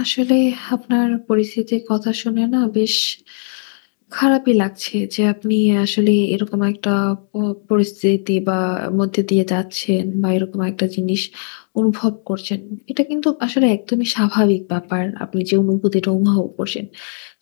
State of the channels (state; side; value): silent; right; digital silence